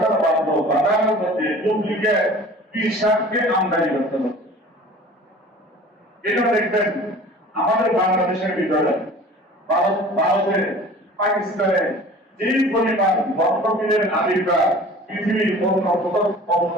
ভাবলো বাজারের মধ্যে ডুপ্লিকেট পীর সাহেবকে আমদানি করতে হবে। এটা দেখবেন আমাদের বাংলাদেশের ভিতরে, ভারতে, পাকিস্তানে যেই পরিমাণ ভক্তপীরের আবির্ভাব পৃথিবীর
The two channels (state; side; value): normal; both; correlation 0.44